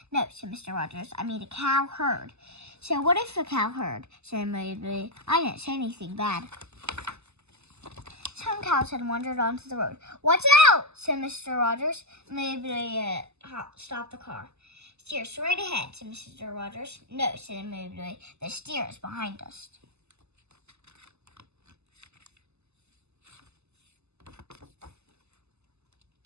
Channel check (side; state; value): left; late; 0.80 ms